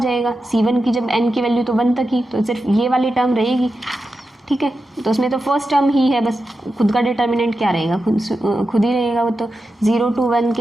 C1 की जब n की वैल्यू तो 1 तक ही, तो सिर्फ ये वाली टर्म रहेगी, ठीक है। तो उसमें तो फर्स्ट टर्म ही है बस, खुद का डिटर्मिनेंट क्या रहेगा, खुद ही रहेगा वो, तो 0 to 1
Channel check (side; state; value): both; normal; correlation 0.90